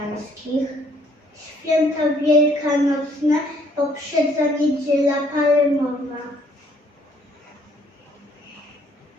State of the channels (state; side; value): normal; both; correlation 0.64